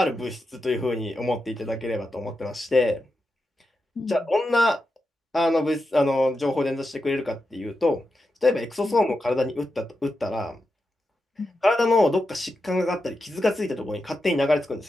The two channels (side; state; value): both; normal; correlation 0.88